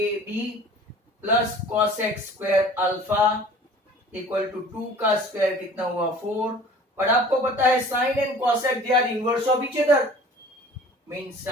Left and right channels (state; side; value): normal; both; correlation 0.46